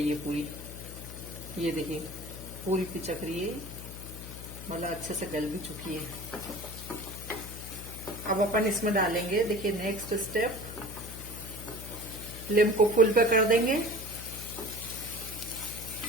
है पूरी। ये देखिए पूरी पिचक रही है, मतलब अच्छे से गल भी चुकी है। अब अपन इसमें डालेंगे, देखिए नेक्स्ट स्टेप, फ्लेम को फुल पे कर देंगे।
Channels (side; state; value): left; noise; hum, 11 dB below the sound